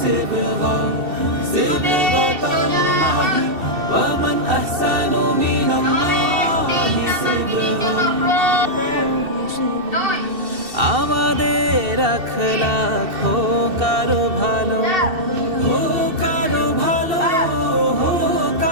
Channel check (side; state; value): left; late; 2.7 ms